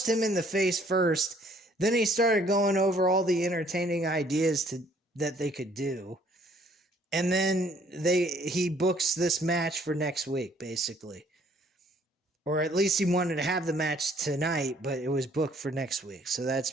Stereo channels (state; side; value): normal; both; correlation 0.61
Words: him in the face first. Then he started going over all the entertaining ideas that they could do. And then he books this match for next week, basically. or at least he wanted to have the match tonight, but it was booked for next week. So that's